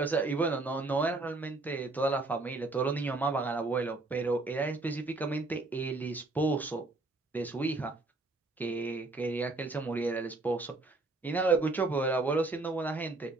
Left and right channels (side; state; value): left; quieter; 3.2 dB